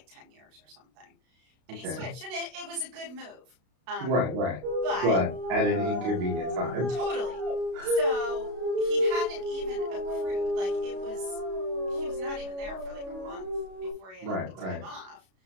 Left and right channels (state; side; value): late; left; 32 ms